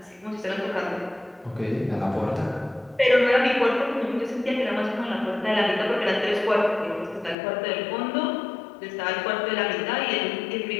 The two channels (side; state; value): right; drops out; at 7.4 s